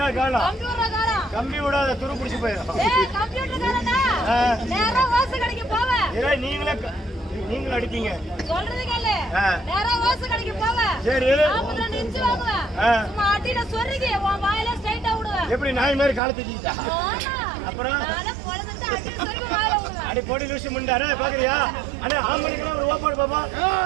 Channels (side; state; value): left; drops out; at 16.2 s